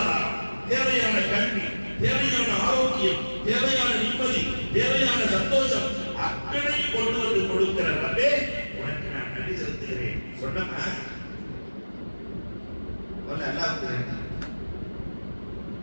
தேவையான கல்வி, தேவையான ஆரோக்கியம், தேவையான நிம்மதி, தேவையான சந்தோஷம் அத்தனையும் கொண்டு வந்து கொடுக்கிற ரப்பே, உனக்கு நான் நன்றி செலுத்துகிறேன் சொன்னமா.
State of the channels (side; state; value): both; inverted; correlation -1.00